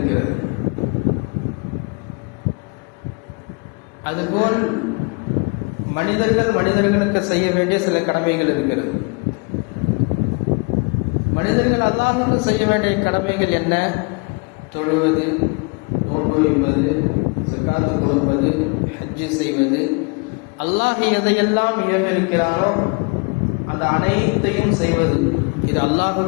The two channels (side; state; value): right; quieter; 32.4 dB